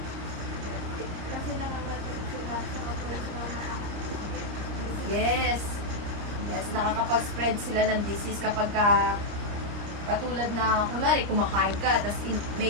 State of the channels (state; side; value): late; left; 30 ms